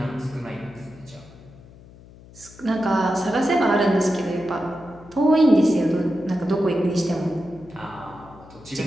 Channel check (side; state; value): left; noise; hum, 21 dB below the sound